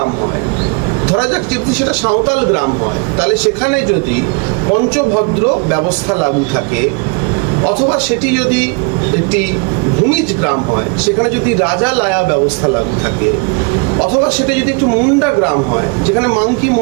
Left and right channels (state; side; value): quieter; left; 32.0 dB